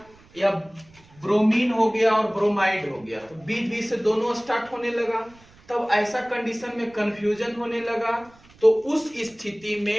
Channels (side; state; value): right; noise; rumble, 27 dB below the sound